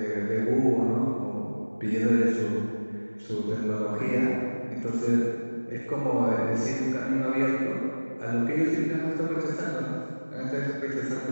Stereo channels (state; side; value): inverted; both; correlation -1.00